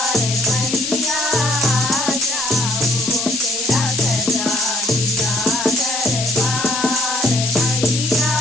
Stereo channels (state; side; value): noise; left; hiss, 3 dB below the sound